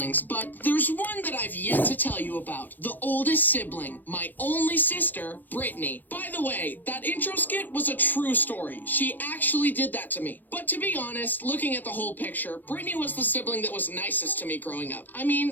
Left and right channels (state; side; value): late; right; 0.086 ms